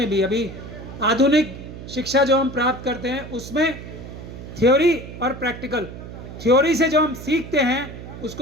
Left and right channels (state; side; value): noise; right; hum, 12 dB below the sound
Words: भी, अभी आधुनिक शिक्षा जो हम प्राप्त करते हैं उसमें थ्योरी और प्रैक्टिकल, थ्योरी से जो हम सीखते हैं